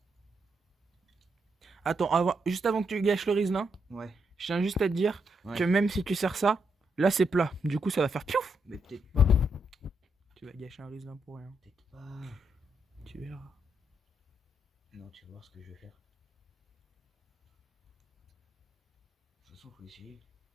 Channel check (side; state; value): both; normal; correlation 0.79